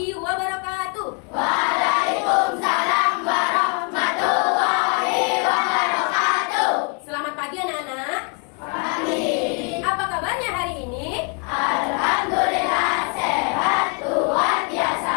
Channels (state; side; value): quieter; right; 36.0 dB